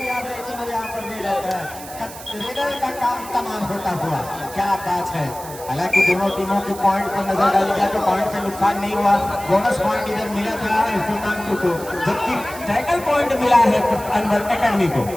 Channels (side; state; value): right; noise; hiss, 15 dB below the sound